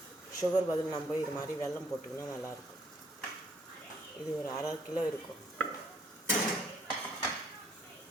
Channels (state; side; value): normal; both; correlation 0.66